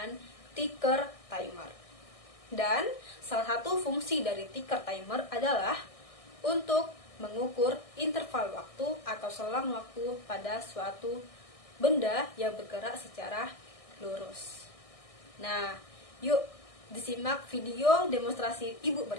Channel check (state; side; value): late; right; 1.6 ms